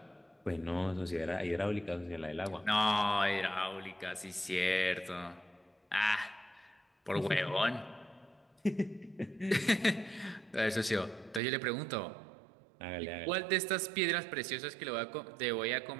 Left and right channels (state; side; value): drops out; left; at 11.4 s